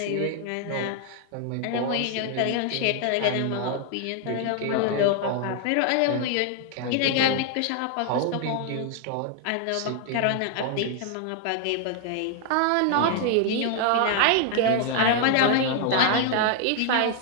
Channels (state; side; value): different; both; correlation 0.00